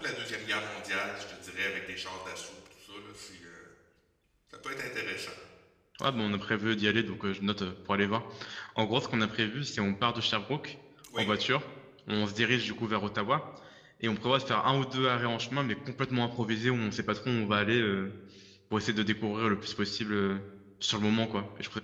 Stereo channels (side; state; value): both; identical; correlation 1.00